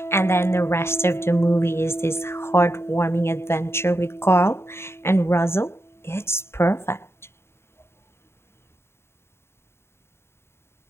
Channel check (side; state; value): right; late; 0.12 ms